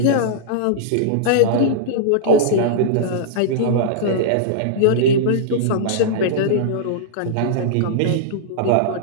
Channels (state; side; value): different; both; correlation -0.02